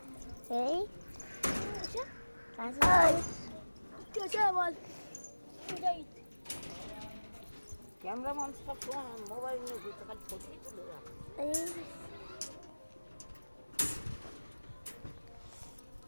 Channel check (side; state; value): both; inverted; correlation -1.00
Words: এই ক্যামেরাম্যান সব সময় মোবাইল নিয়ে ঘুরতে পারে, ছবি তুলে রাখে।